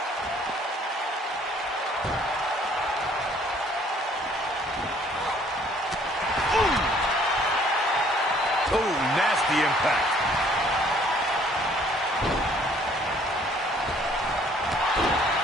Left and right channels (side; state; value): both; normal; correlation 0.60